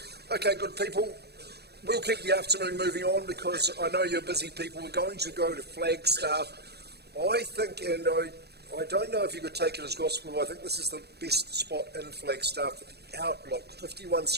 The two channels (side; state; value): left; late; 0.47 ms